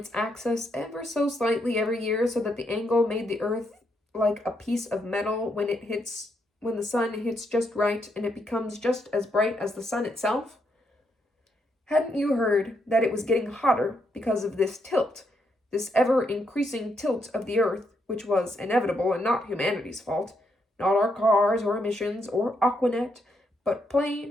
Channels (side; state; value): both; normal; correlation 0.78